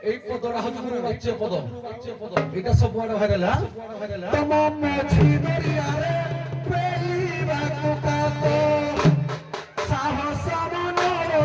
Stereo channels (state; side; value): identical; both; correlation 1.00